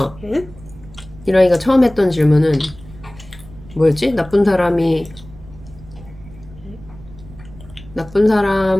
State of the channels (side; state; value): right; noise; rumble, 19 dB below the sound